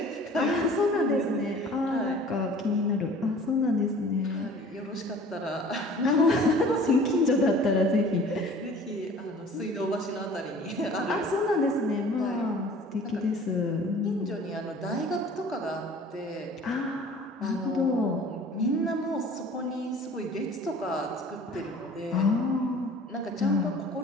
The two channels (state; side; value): normal; both; correlation 0.47